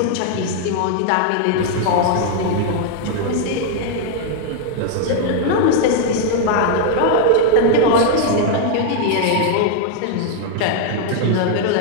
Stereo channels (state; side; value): different; both; correlation 0.00